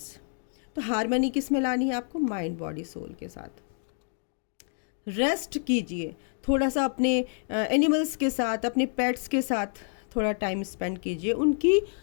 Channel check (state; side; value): silent; right; 59 dB below the other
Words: तो हारमनी किस में लानी है आपको, माइंड, बॉडी, सोल के साथ। रेस्ट कीजिए थोड़ा सा, अपने एनिमल्स के साथ, अपने पेट्स के साथ थोड़ा टाइम स्पेंड कीजिए,